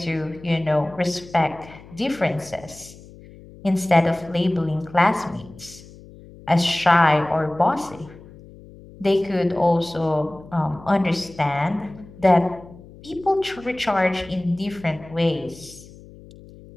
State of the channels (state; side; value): noise; left; hum, 20 dB below the sound